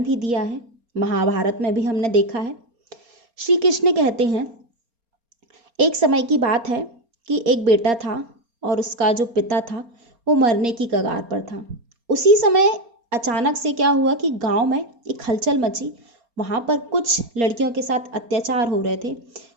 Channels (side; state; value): left; late; 4.3 ms